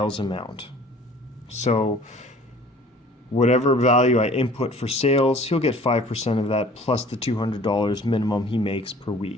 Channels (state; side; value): normal; both; correlation 0.50